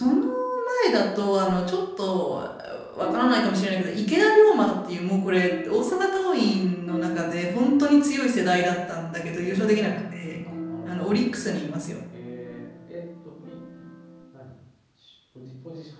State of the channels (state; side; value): identical; both; correlation 1.00